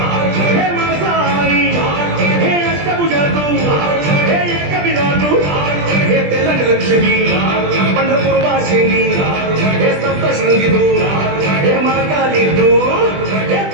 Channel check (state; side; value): late; left; 20 ms